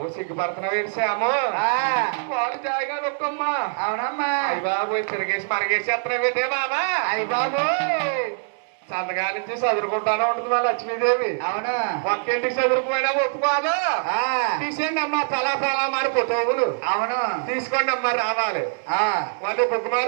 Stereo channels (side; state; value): left; silent; digital silence